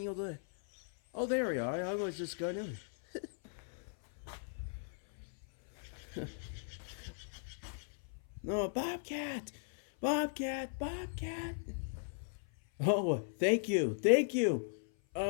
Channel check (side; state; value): right; silent; 53 dB below the other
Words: Oh, there you are. I was just going to. No, Bobcat! Bobcat! Bobcat! Oh, thank you, thank you!